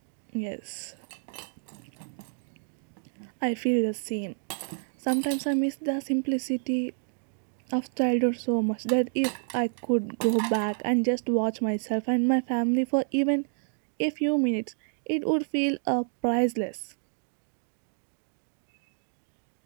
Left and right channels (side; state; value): left; silent; 58 dB below the other